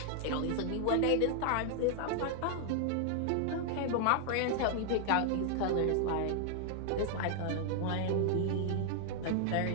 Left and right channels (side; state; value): both; different; correlation 0.00